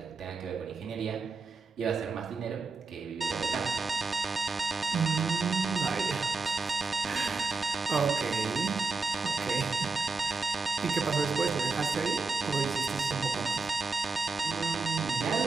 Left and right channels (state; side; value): quieter; left; 4.1 dB